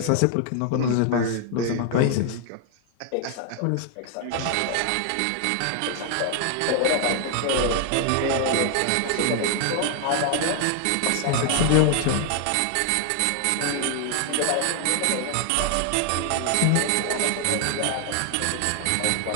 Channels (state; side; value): different; both; correlation 0.00